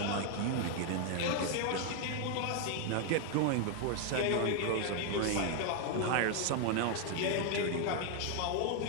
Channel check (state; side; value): different; both; correlation 0.01